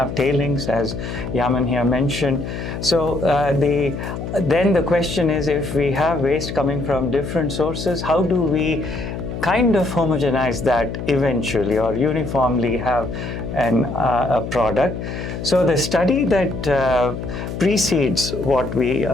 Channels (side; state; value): left; noise; hum, 6 dB below the sound